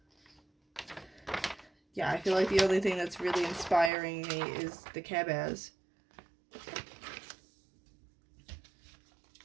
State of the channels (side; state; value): left; drops out; at 3.9 s